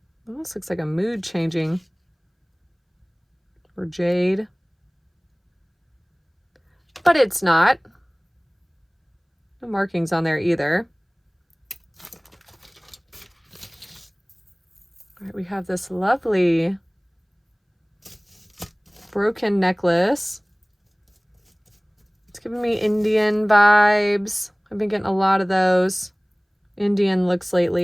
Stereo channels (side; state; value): both; identical; correlation 1.00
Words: Almost looks like a mood changing. Or jade. But it's not. No markings on there either. All right, we have this lovely broken necklace. It's giving me Indian vibes. I've been getting a lot of those Indian looks